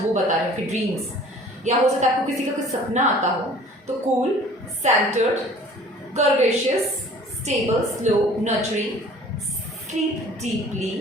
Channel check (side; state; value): both; normal; correlation 0.49